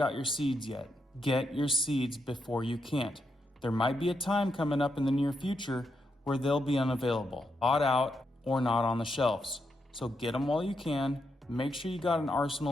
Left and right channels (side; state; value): both; normal; correlation 0.82